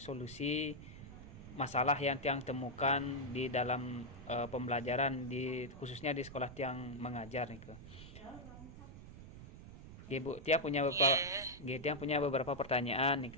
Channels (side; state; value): right; noise; rumble, 14 dB below the sound